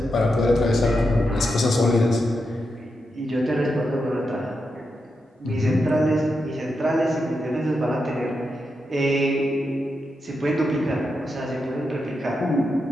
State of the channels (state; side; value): normal; both; correlation 0.86